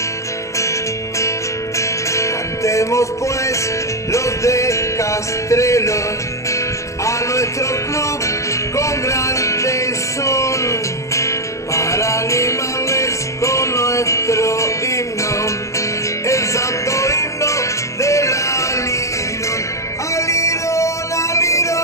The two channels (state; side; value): late; right; 0.15 ms